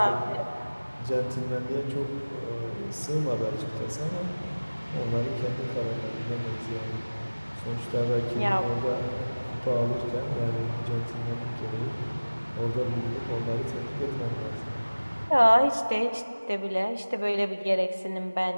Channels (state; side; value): inverted; both; correlation -1.00